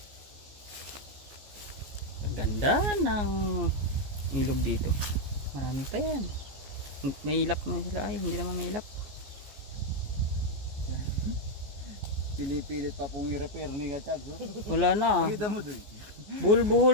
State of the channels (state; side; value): late; left; 14 ms